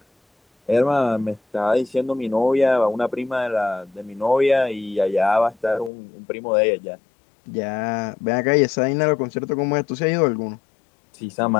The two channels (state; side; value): drops out; right; at 5.9 s